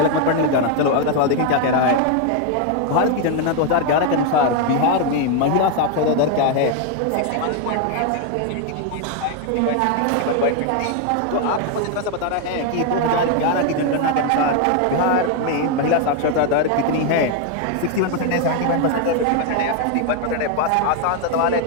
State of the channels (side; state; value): both; different; correlation 0.01